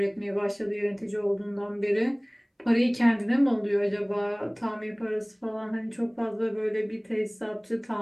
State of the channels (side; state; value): both; identical; correlation 1.00